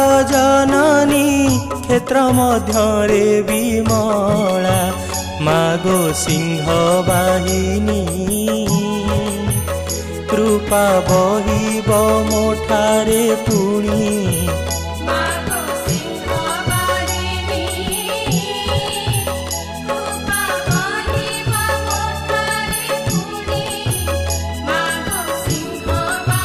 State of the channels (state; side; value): identical; both; correlation 1.00